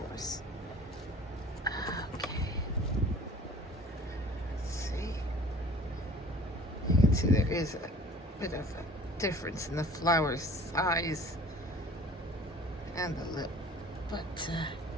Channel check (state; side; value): normal; both; correlation 0.48